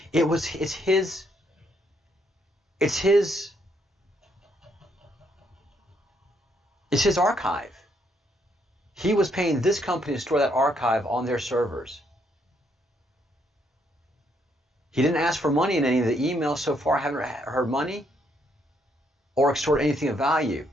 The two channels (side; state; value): both; normal; correlation 0.73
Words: It's his archive. He was paying this company to store that archive on their servers. He didn't ask for money in any of the emails so far. I haven't heard money or extort anything of value.